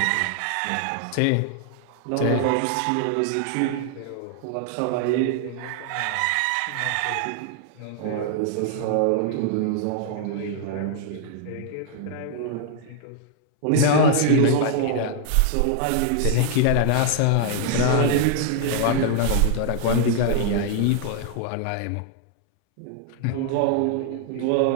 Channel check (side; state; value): both; different; correlation 0.00